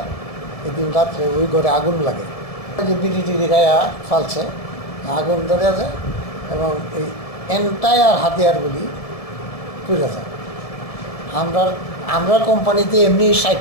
এদিন রাত্রে ওই ঘরে আগুন লাগে যে বিড়ি গায়া ফালছে আগুন ধরে যায় এবং এই এন্টায়ার হাতিয়ারগুলি পুড়ে যায় আমরা কোম্পানিতে এমনি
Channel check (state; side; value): late; right; 1.7 ms